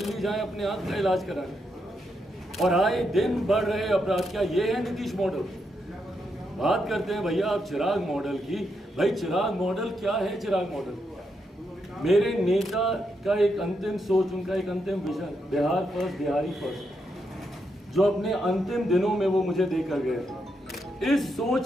जाएं अपने आंख का इलाज कराने, और आए दिन बढ़ रहे अपराध। क्या ये है नीतीश मॉडल? बात करते हैं भैया आप चिराग मॉडल की। भाई चिराग मॉडल क्या है? चिराग मॉडल मेरे नेता का एक अंतिम सोच, उनका एक अंतिम vision, Bihar first, Bihari first, जो अपने अंतिम दिनों में वो मुझे देकर गए थे। इस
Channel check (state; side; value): normal; both; correlation 0.81